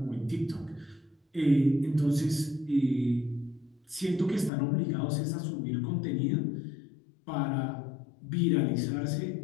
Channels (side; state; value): right; drops out; at 4.5 s